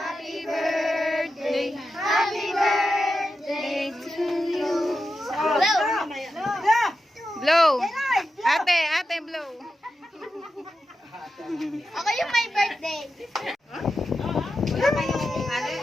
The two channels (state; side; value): normal; both; correlation 0.90